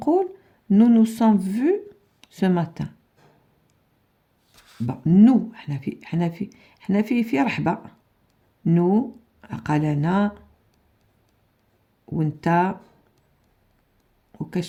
nous nous sommes vus ce matin. Bon, nous حنا في رحبة. nous قال انا وانت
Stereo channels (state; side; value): identical; both; correlation 1.00